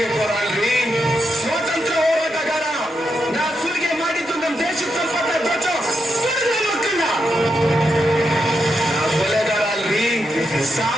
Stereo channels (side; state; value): both; normal; correlation 0.83